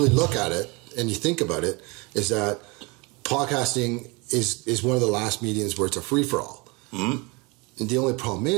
look at it and you think about it, is that podcasting is one of the last mediums where it's a free-for-all. Mm-hmm. And the only problem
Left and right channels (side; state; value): left; quieter; 27.6 dB